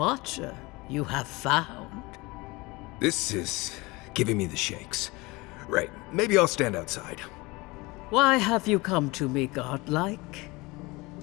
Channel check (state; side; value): quieter; right; 23.4 dB